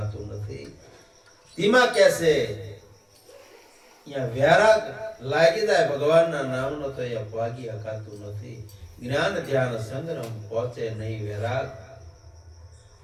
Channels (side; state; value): both; identical; correlation 1.00